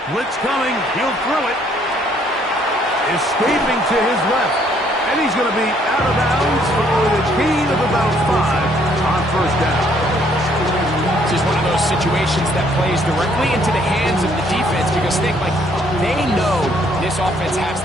coming. He'll throw it. Escaping to his left. And he's going to be out of bounds following a gain of about 5 on first down. This is one of those situations that plays directly into the hands of the defense because they know this offense has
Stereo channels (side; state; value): both; normal; correlation 0.66